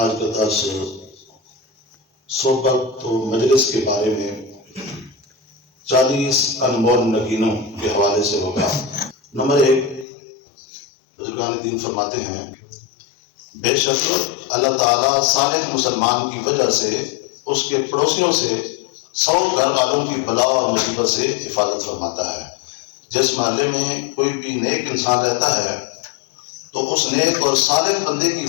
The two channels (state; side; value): drops out; right; at 10.1 s